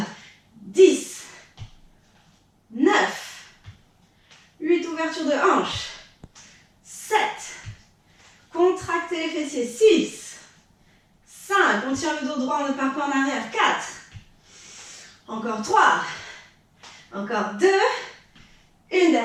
10, 9, 8, ouverture de hanche. 7, contractez les fessiers. 6, 5, on tire le dos droit, on ne part pas en arrière. 4, encore 3, encore 2, une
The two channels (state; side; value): identical; both; correlation 1.00